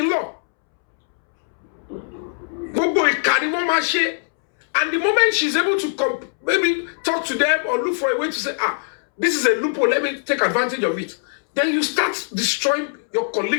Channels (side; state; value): right; silent; 65 dB below the other